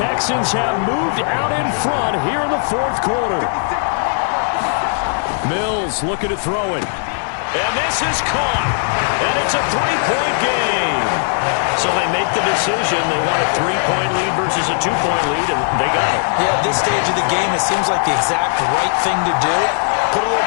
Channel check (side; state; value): right; silent; digital silence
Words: have moved out in front here in the 4th quarter. Mills looking to throw it. And this is caught. And it's a 3-point game. So they make the decision. They want a 3-point lead versus a 2-point lead, and they got it. Yeah, at this stage of the game, it seems like the exact right thing to do. Put a